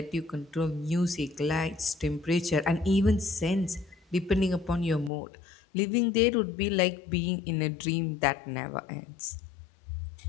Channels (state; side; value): drops out; right; at 5.1 s